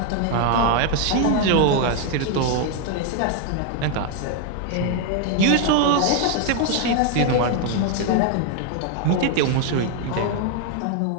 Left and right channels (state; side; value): different; both; correlation 0.00